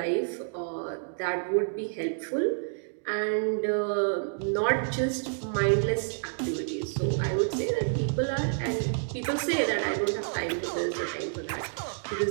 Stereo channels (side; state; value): left; silent; digital silence